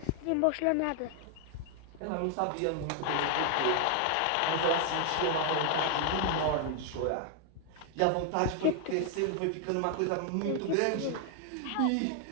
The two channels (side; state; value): both; different; correlation 0.00